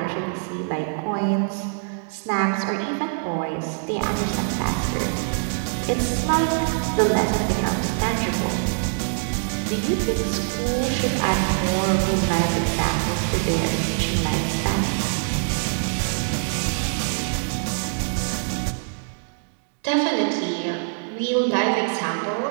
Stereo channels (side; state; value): left; silent; digital silence